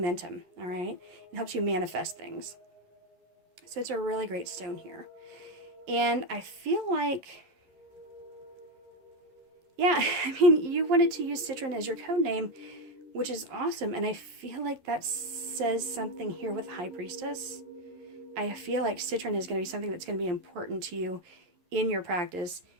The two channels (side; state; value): left; late; 11 ms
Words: all right? It helps you manifest things. So it's a really great stone here. And I feel like, yeah, I mean, you wanted to use Citrine as your code name, which is awesome. And I feel like that says something here with High Priestess. I feel like Citrine is going to be something that's going to be important to you in your practice,